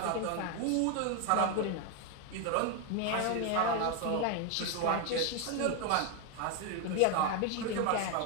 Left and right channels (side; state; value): both; different; correlation 0.01